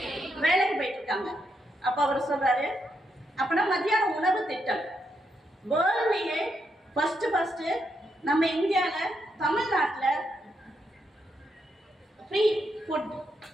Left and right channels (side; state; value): both; normal; correlation 0.80